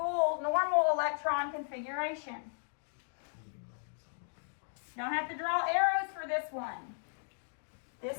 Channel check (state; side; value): silent; right; digital silence